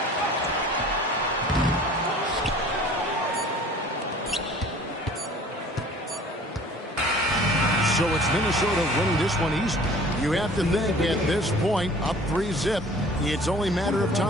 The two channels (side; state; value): both; normal; correlation 0.48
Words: So it's Minnesota winning this one easy. You have to think at this point, up 3-zip. It's only a matter of